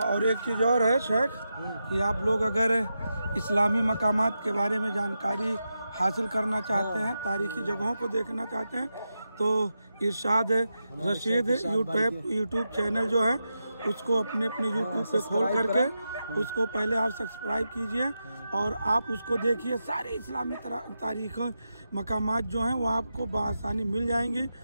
और एक चीज़ और है शेख कि आप लोग अगर इस्लामी मकामात के बारे में जानकारी हासिल करना चाहते हैं, तारीख़ी जगहों को देखना चाहते हैं, तो इरशाद रशीद यूट्यूब चैनल जो है उसको अपने यूट्यूब पे खोल करके उसको पहले आप सब्सक्राइब कीजिए और आप उसको देखिए। सारे इस्लामी तारीख़ मकामात जो हैं वो आपको बआसानी मिल जाएंगी,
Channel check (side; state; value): both; inverted; correlation -0.88